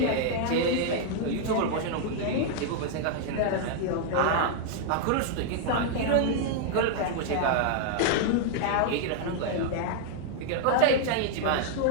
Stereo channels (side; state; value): both; different; correlation 0.00